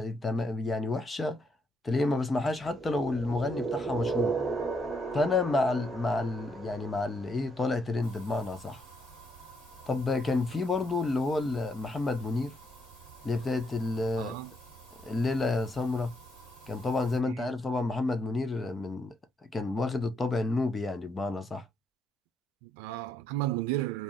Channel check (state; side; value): normal; both; correlation 0.75